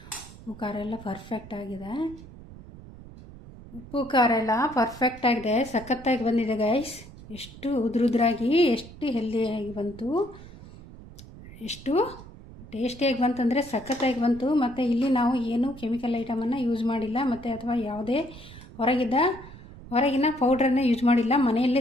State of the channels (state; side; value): noise; right; rumble, 17 dB below the sound